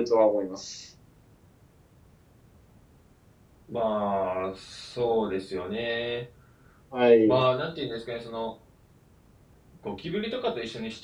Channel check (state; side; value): identical; both; correlation 1.00